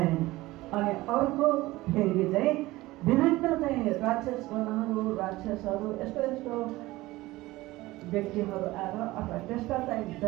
अनि अर्को फेरि चाहिँ विभिन्न चाहिँ राक्षसगणहरू, राक्षसहरू, यस्तो यस्तो व्यक्तिहरू आएर अथवा त्यस्ता चाहिँ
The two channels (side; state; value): left; quieter; 18.8 dB